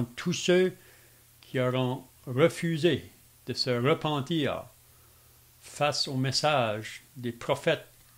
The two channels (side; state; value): both; identical; correlation 1.00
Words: tous ceux qui auront refusé de se repentir face au message des prophètes